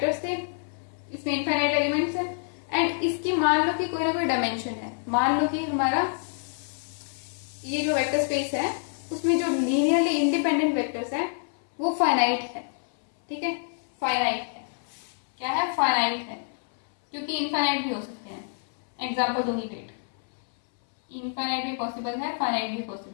थे, इसमें इनफाइनाइट एलिमेंट्स है, एंड इसकी मान लो कि कोई ना कोई डायमेंशन है, मान लो कि हमारा ये जो वेक्टर स्पेस है उसमें जो लीनियरली इंडिपेंडेंट वेक्टर्स है वो फाइनाइट है, ठीक है, फाइनाइट है। क्या है? फाइनाइट है, क्योंकि इनफाइनाइट भी हो सकते हैं। एग्जाम्पल दूंगी, वेट, इनफाइनाइट भी पॉसिबल है, फाइनाइट भी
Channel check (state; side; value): silent; right; 60 dB below the other